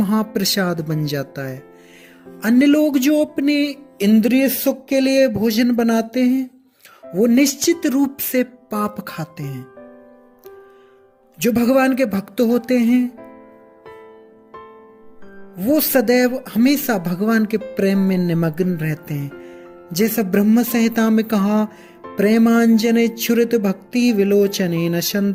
बन जाता है। अन्य लोग जो अपने इंद्रिय सुख के लिए भोजन बनाते हैं वो निश्चित रूप से पाप खाते हैं। जो भगवान के भक्त होते हैं वो सदैव हमेशा भगवान के प्रेम में निमग्न रहते हैं। जैसा ब्रह्म संहिता में कहा, प्रेमांजने छुरित भक्ति विलोचने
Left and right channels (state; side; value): identical; both; correlation 1.00